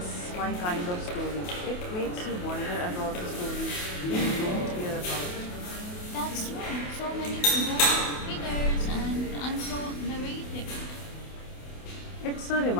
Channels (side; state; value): right; late; 28 ms